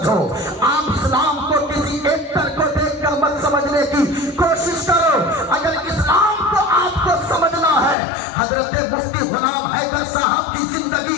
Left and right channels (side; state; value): right; drops out; at 8.0 s